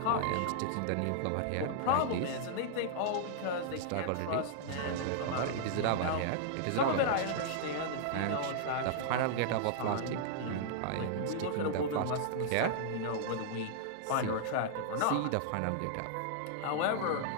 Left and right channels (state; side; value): different; both; correlation -0.01